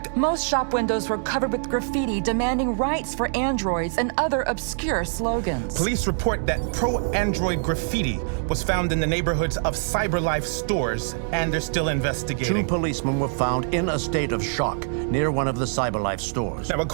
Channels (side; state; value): left; silent; digital silence